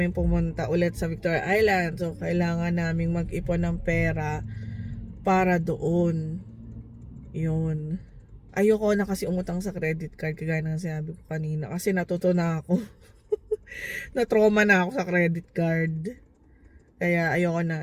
pumunta ulit sa Victoria Island, so kailangan namin mag-ipon ng pera para doon. Yun. Ayoko na kasi umutang sa credit card, kagaya ng sinabi ko kanina. Kasi natuto na ako. Na-trauma na ako sa credit card. Kaya ayoko na.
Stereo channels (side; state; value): both; identical; correlation 1.00